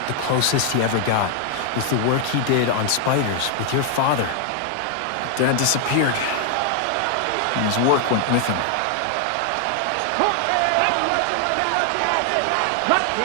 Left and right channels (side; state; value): both; different; correlation 0.00